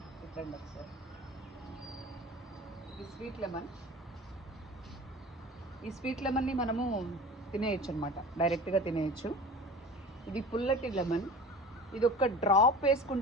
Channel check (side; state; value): both; normal; correlation 0.38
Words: ఇట్రండి ఒకసారి. ఇది స్వీట్ లెమన్. ఈ స్వీట్ లెమన్ని మనము తినేయచ్చు అనమాట, డైరెక్ట్గా తినేయచ్చు. ఇది పుల్లటి లెమన్. ఇది ఒక్క డ్రాప్